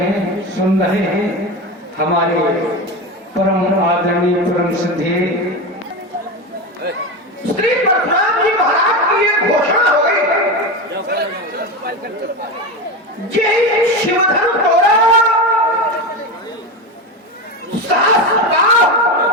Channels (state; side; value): normal; both; correlation 0.20